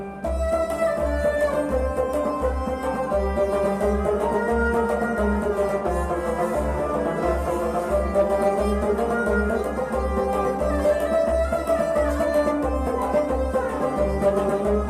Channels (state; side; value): identical; both; correlation 1.00